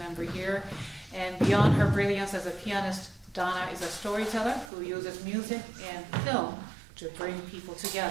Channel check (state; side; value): drops out; left; at 4.7 s